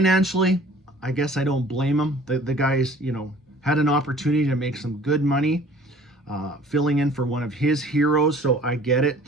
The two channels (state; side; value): normal; both; correlation 0.50